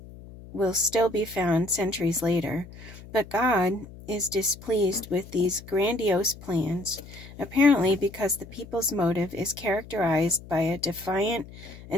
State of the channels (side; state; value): left; noise; hum, 17 dB below the sound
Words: will still be found centuries later. But God is displeased with these grandiose plans, apparently because the people's motive is characterized by a defiant